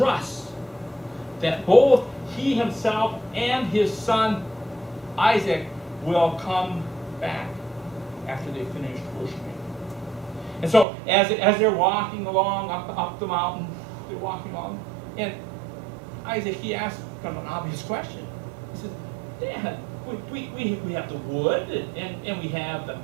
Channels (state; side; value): drops out; left; at 10.9 s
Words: that both he himself and his son Isaac will come back after they finish worshiping. And so as they're walking along up the mountain, they're walking along, and Isaac, he asks kind of an obvious question. He says, Dad, we have the wood, and we have